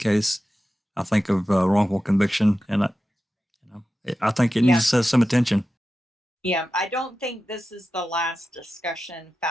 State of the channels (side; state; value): both; normal; correlation 0.93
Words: I think, of wrongful conviction, and I think it needs some attention. Yeah, I don't think this is the last discussion